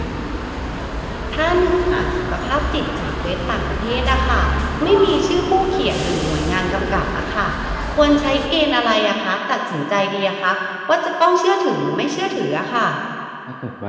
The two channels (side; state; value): both; identical; correlation 1.00